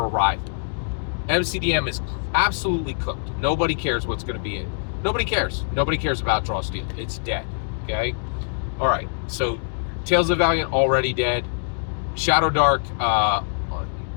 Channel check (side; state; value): right; silent; digital silence